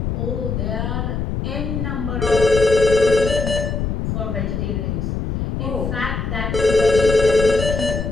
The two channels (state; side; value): noise; left; rumble, 3 dB below the sound